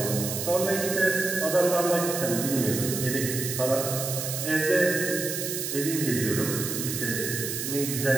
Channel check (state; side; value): noise; right; hiss, 4 dB below the sound